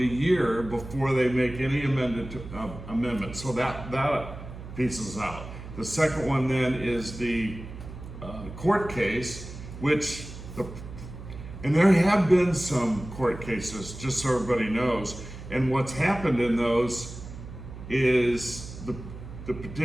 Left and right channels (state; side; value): noise; right; hum, 12 dB below the sound